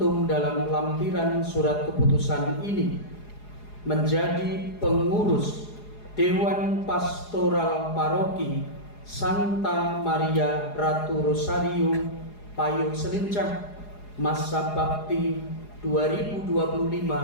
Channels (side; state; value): right; late; 4.8 ms